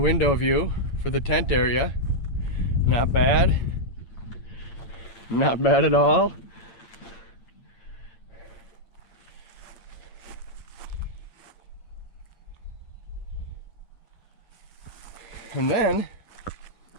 window view for the tent area. Not bad. Not bad at all. And then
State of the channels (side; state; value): right; late; 8.8 ms